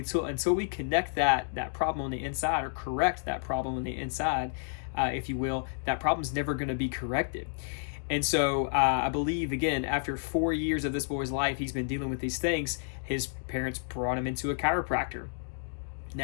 we connect that problem on the inside, or correct that problem on the inside, if you will, that problem's never going to be corrected. And so I believe, again, after 4 years of this boy's life, he's been dealing with these things. His parents brought him into a chiropractor.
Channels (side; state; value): right; silent; digital silence